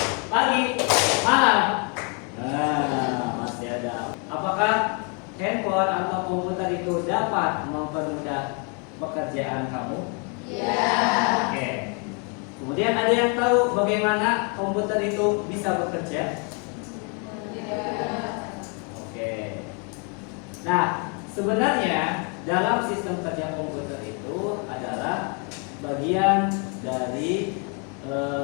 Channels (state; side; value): quieter; right; 36.3 dB